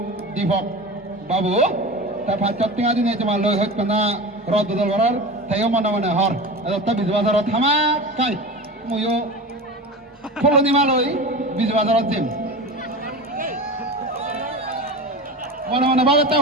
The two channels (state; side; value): normal; both; correlation 0.29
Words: দীপক বাবু তা ফাচত টিঙা দিনে জমা লই হইত না রদ বদল করার তাইও মনে মনে হর এটা বিজ বাজারত থামা কাই মইও ফলনি মালই বিজ বাজারত দিম মনে মনে ভাবে তা